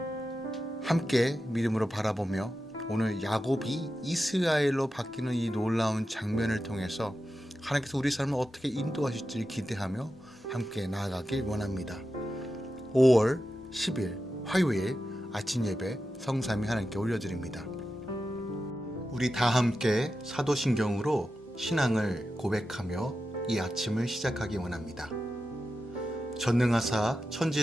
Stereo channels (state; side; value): normal; both; correlation 0.91